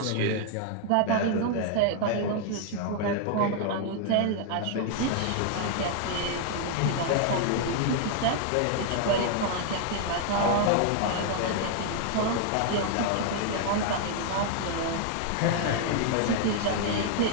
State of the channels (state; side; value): different; both; correlation 0.00